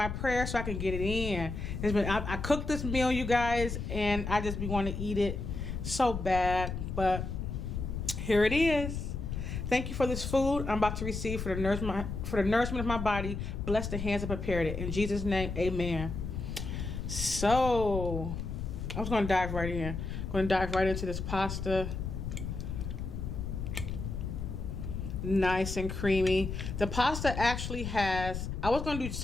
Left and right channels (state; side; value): noise; left; rumble, 5 dB below the sound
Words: prayer so I can get it in. I cooked this meal, you guys, and I just be wanting to eat it so bad, but here it is. Thank you for this food I'm about to receive for the nourishment of my body. Bless the hands that prepared it. In Jesus' name, amen. So, I was going to dive right in. I'm going to dive right into this pasta. Nice and creamy. The pasta actually has, I was going to do